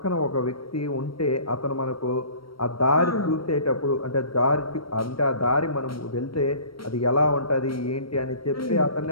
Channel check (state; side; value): late; right; 0.74 ms